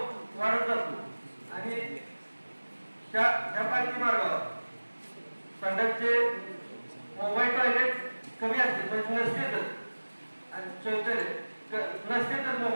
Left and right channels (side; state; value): both; inverted; correlation -1.00